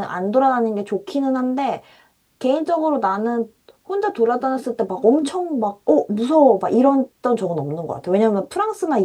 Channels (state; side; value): identical; both; correlation 1.00